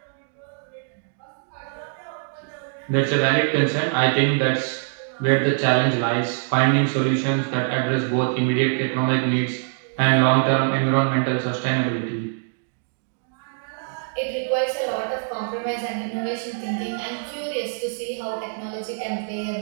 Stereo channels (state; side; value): silent; left; digital silence